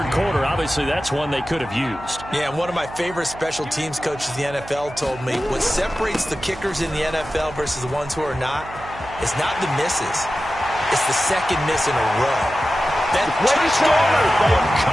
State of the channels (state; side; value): noise; right; hum, 16 dB below the sound